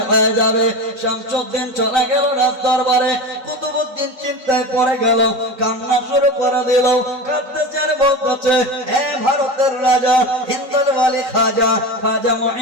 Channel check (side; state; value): left; late; 3.9 ms